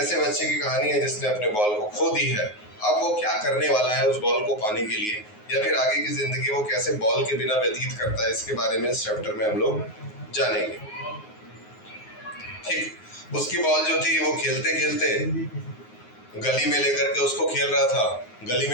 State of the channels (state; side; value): late; right; 9.5 ms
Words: बच्चे की कहानी है जिसने अपने बॉल को खो दी है। अब वो क्या करने वाला है उस बॉल को पाने के लिए, या फिर आगे की जिंदगी वो कैसे बॉल के बिना व्यतीत करता है, इसके बारे में इस चैप्टर में हम लोग जानेंगे। ठीक, उसकी बॉल जो थी वो खेलते खेलते गली में लेकर के उसको खेल रहा था। गली